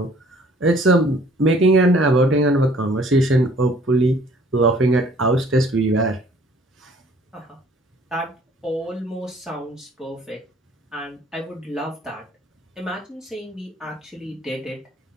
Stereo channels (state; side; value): normal; both; correlation 0.56